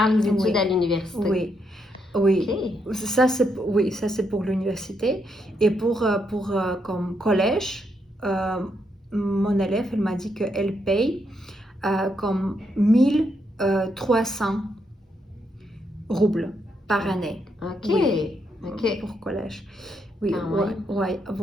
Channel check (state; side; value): normal; both; correlation 0.78